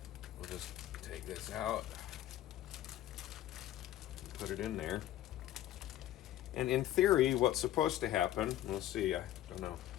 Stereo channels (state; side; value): quieter; right; 13.3 dB